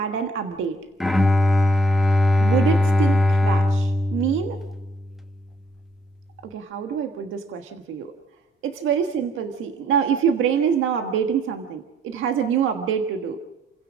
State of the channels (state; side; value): normal; both; correlation 0.65